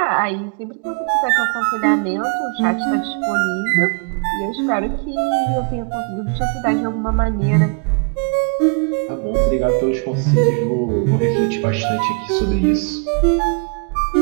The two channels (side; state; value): left; quieter; 37.8 dB